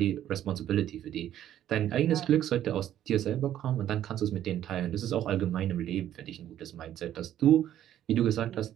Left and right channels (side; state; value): left; quieter; 11.6 dB